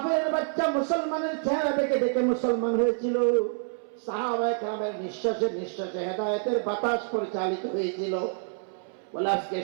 বাচ্চা মুসলমানের চেহারা দেখে দেখে মুসলমান হয়েছিল, সাহাবায়ে কেরামের নিঃশ্বাসে নিঃশ্বাসে হেদায়েতের বাতাস পরিচালিত হয়েছিল। বলে আজকে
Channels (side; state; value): left; silent; 60 dB below the other